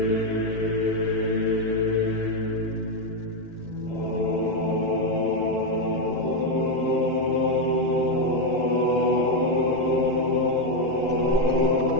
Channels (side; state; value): right; late; 2.7 ms